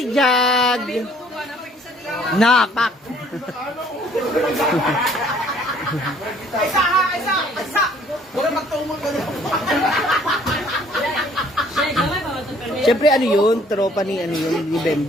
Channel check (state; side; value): normal; both; correlation 0.59